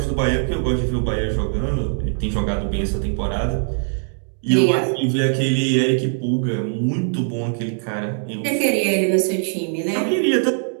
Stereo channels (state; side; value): silent; left; 65 dB below the other